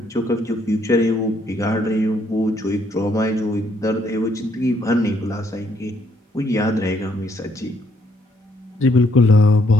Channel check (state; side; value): normal; both; correlation 0.70